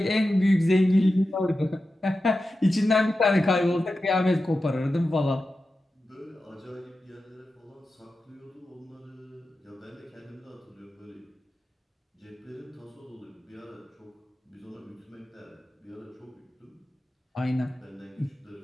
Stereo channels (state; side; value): normal; both; correlation 0.92